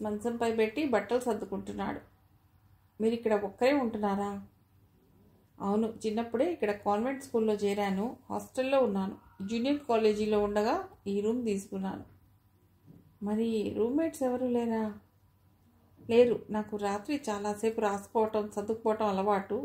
మంచంపై పెట్టి బట్టలు సర్దుకుంటున్నాడు. మీరు ఇక్కడ ఒక్కరే ఉంటున్నారా? అవును, చిన్నప్పుడే ఇక్కడ కాన్వెంట్ స్కూల్లో చేరాను. హాస్టల్లో ఉన్నాను. జూనియర్ కాలేజీలో ఉండగా ఈ రూమ్ తీసుకున్నాను. మరి రూమ్మేట్స్ ఎవరు లేరా? లేరు. నాకు రాత్రి చాలాసేపు రాసుకోవటం, చదువుకోవటం అలవాటు.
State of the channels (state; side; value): identical; both; correlation 1.00